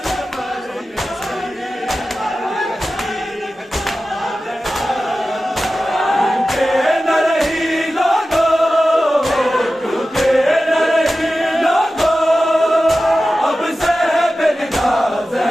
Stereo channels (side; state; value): both; normal; correlation 0.94